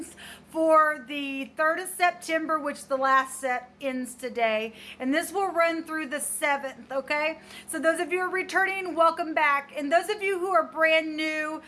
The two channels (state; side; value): identical; both; correlation 1.00